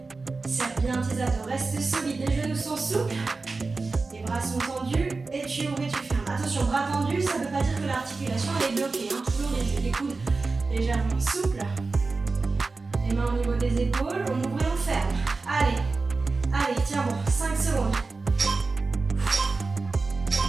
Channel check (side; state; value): left; quieter; 3.9 dB